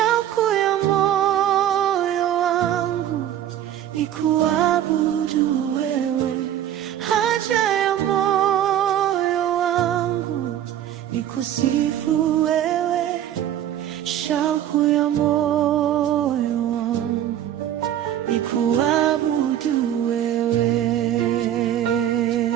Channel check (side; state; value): left; quieter; 11.3 dB